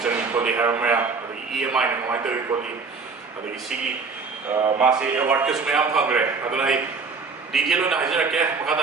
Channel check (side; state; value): left; quieter; 4.6 dB